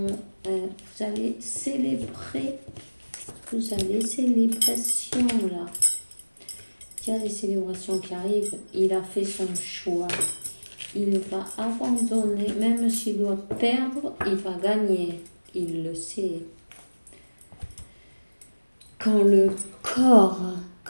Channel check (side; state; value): both; inverted; correlation -1.00